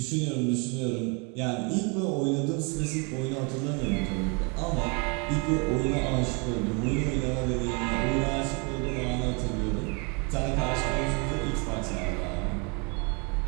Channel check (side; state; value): left; quieter; 33.0 dB